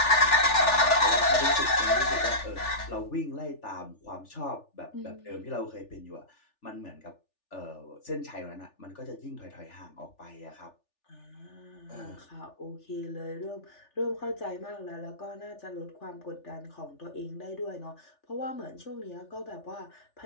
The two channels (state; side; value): late; right; 3.4 ms